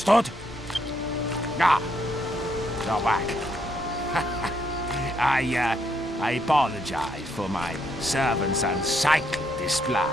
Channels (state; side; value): normal; both; correlation 0.74